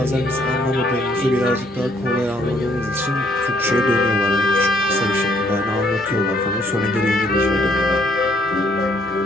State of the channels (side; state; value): both; normal; correlation 0.67